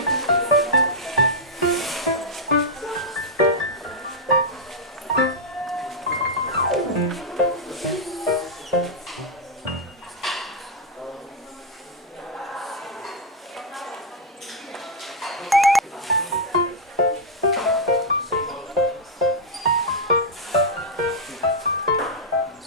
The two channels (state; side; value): normal; both; correlation -0.03